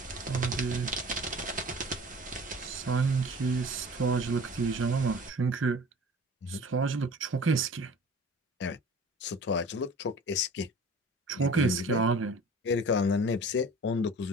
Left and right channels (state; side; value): normal; both; correlation 0.43